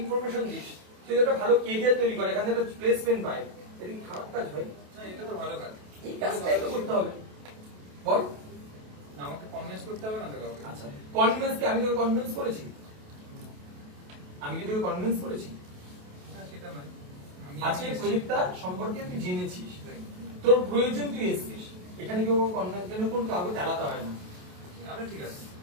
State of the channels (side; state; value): left; late; 28 ms